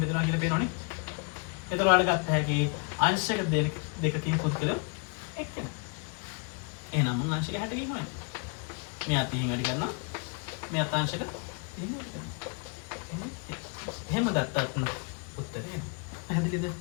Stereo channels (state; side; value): quieter; right; 35.4 dB